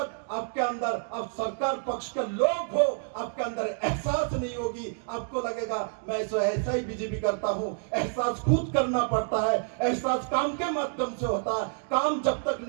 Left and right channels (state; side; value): silent; left; 59 dB below the other